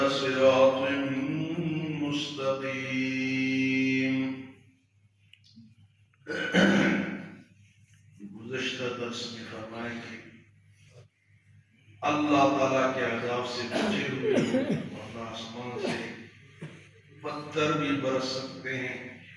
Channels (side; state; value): both; identical; correlation 1.00